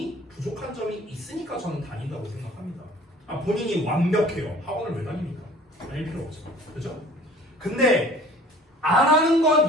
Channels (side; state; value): both; normal; correlation 0.49